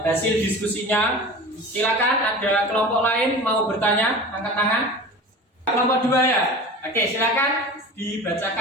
hasil diskusinya. Silakan, ada kelompok lain mau bertanya, angkat tangan. Kelompok 2 ya. Oke, silakan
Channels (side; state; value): both; normal; correlation 0.36